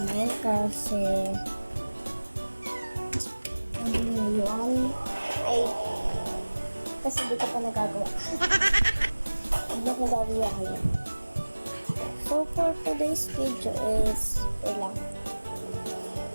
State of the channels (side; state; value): both; inverted; correlation -1.00